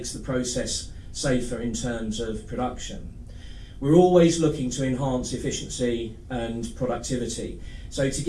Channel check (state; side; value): identical; both; correlation 1.00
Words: the process safer in terms of production. We're always looking to enhance efficiency and productivity. So to